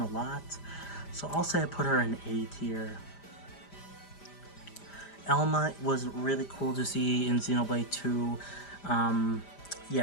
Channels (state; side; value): late; right; 5.0 ms